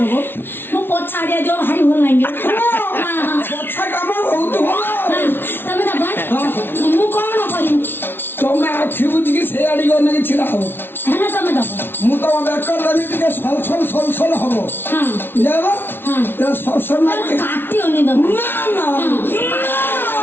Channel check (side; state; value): right; late; 0.11 ms